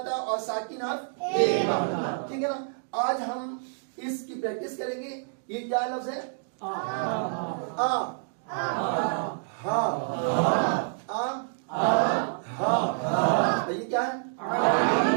ہے. اور ساکن حرف 1 بار. ٹھیک ہے نا. آج ہم اس کی پریکٹس کریں گے. یہ کیا لفظ ہے؟ آ ہا یہ کیا ہے؟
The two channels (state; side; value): silent; left; digital silence